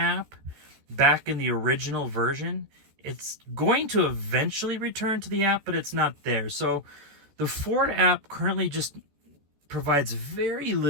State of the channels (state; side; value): late; left; 14 ms